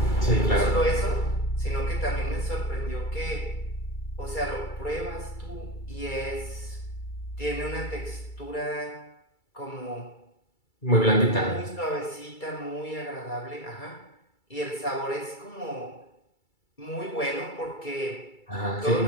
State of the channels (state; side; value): late; right; 2.3 ms